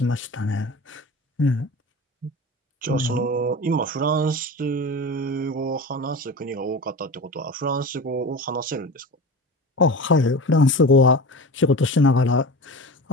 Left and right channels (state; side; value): normal; both; correlation 0.31